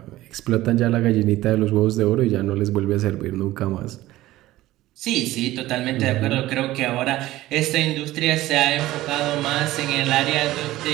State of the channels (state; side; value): quieter; left; 16.3 dB